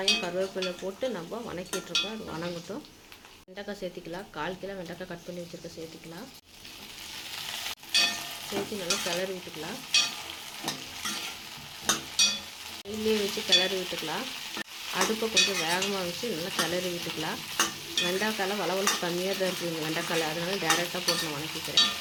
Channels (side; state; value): both; identical; correlation 1.00